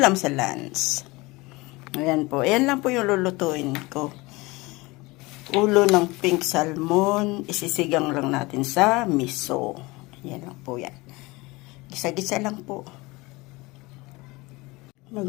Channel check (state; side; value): quieter; right; 22.9 dB